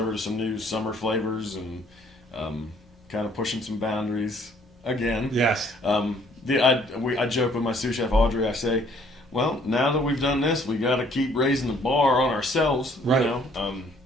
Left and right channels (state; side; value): normal; both; correlation 0.61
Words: to some new summer flavors and kind of pushing some boundaries again. Yes. I joke with my sous chef Audrey. I say, well, now that we've done this, we got to keep raising the bar on ourselves. Right.